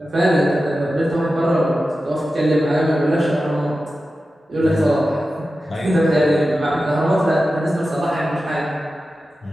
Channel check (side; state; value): both; normal; correlation 0.93